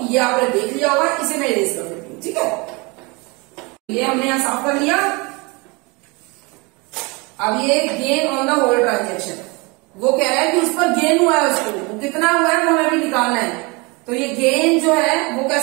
ये आपने देख लिया होगा, इसे मैं इरेज कर देती हूं। ठीक है, ये हमने यहां साफ कर लिया। अब ये gain on the whole transaction, वो कह रहा है कि उस पर गेन हुआ है, उसको वो कितना हुआ है वो हमें भी निकालना है। तो ये गेन जो है वो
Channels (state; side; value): quieter; left; 27.5 dB